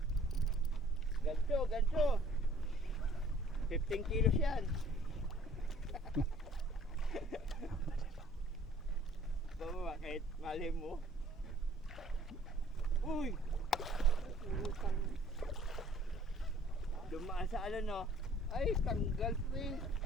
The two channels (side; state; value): both; normal; correlation 0.55